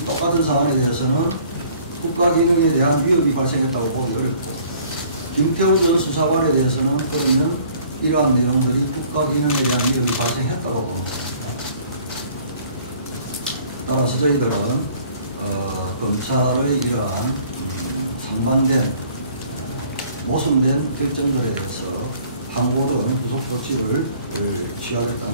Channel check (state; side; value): inverted; both; correlation -0.55